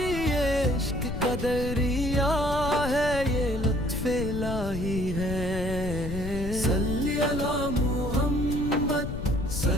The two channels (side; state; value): left; noise; rumble, 6 dB below the sound